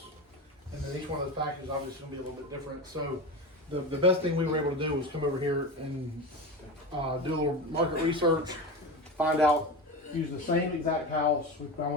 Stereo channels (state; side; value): normal; both; correlation 0.24